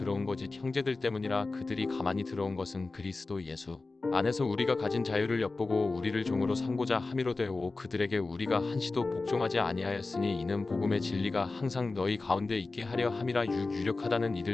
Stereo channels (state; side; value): quieter; right; 3.6 dB